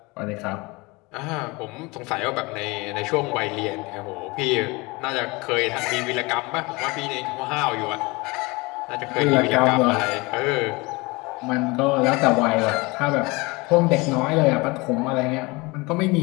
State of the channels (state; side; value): quieter; right; 24.9 dB